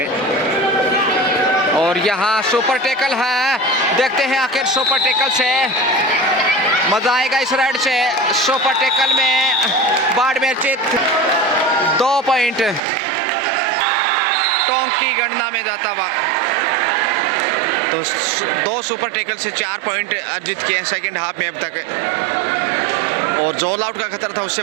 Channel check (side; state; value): left; drops out; at 12.8 s